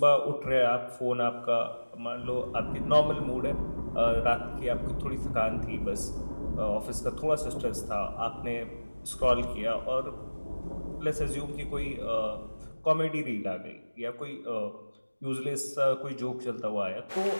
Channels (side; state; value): both; inverted; correlation -1.00